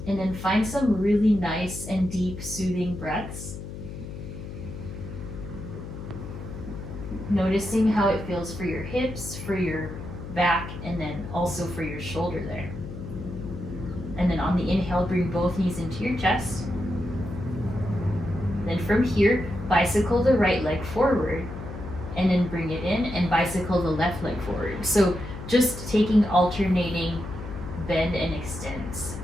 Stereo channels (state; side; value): noise; left; hum, 9 dB below the sound